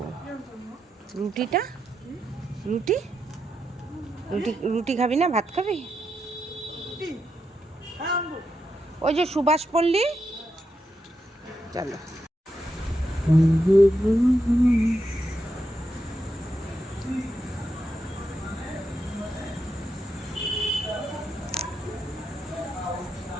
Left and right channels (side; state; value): both; normal; correlation 0.84